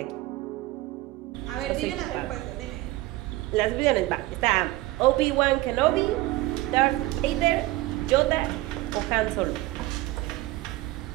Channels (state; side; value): quieter; left; 18.4 dB